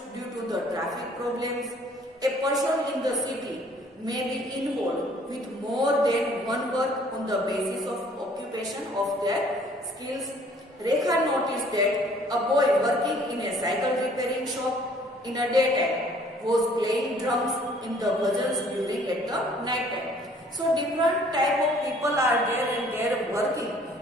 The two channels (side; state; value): both; normal; correlation 0.57